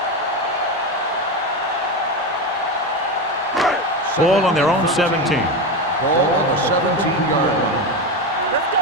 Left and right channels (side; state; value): both; normal; correlation 0.17